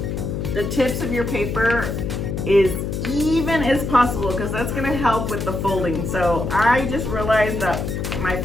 tips of your paper as even as possible, because that's gonna help with the folding. So I just realized that my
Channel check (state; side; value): noise; left; hum, 3 dB below the sound